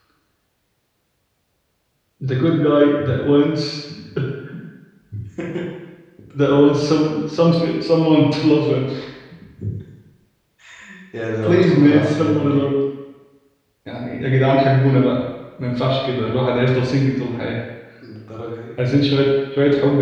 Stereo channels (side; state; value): both; identical; correlation 1.00